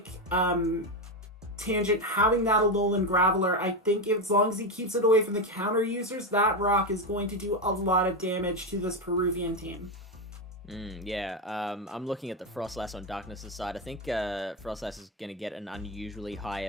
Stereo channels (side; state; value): both; normal; correlation 0.11